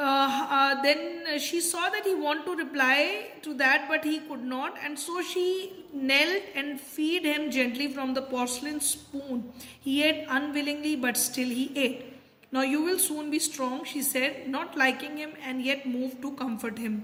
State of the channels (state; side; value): identical; both; correlation 1.00